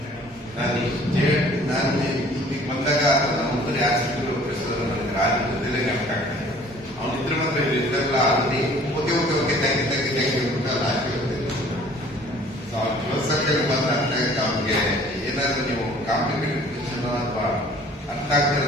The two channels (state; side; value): normal; both; correlation 0.53